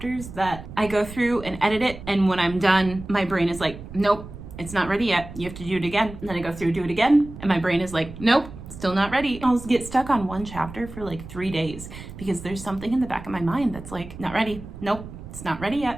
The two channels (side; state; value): right; noise; rumble, 13 dB below the sound